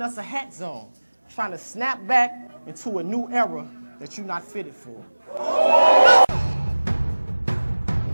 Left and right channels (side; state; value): both; inverted; correlation -1.00